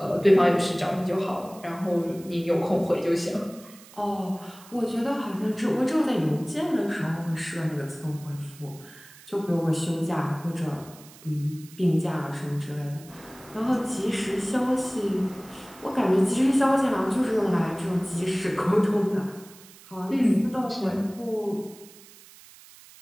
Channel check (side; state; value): right; noise; hiss, 21 dB below the sound